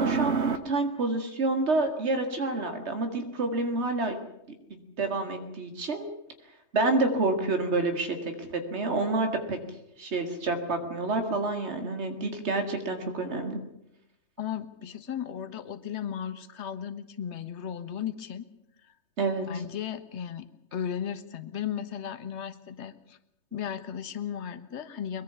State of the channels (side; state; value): left; late; 3.2 ms